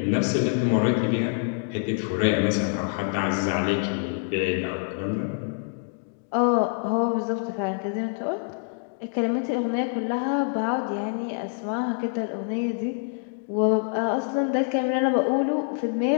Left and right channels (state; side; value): silent; right; 61 dB below the other